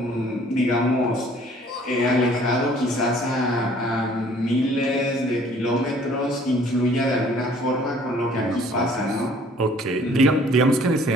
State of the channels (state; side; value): normal; both; correlation 0.56